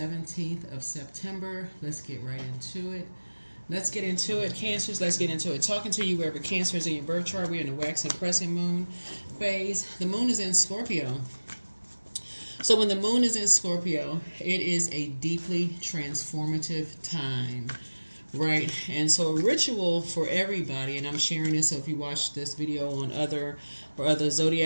of September. Let's get right into it. Let's get into it, Cancers. Let's get into it. Talking to you wherever Cancer is in your birth chart. We're in the waxing crescent moon phase. The moon is in Scorpio. So when the moon is in Scorpio, it is a deeply transformative time, right? And so a ritual for everybody, and I'm sharing this so if you watch this video on other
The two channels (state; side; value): inverted; both; correlation -1.00